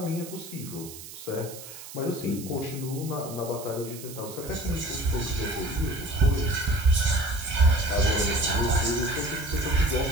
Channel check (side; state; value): right; noise; hiss, 14 dB below the sound